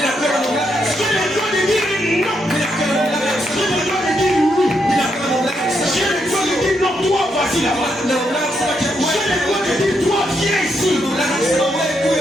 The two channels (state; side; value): normal; both; correlation 0.79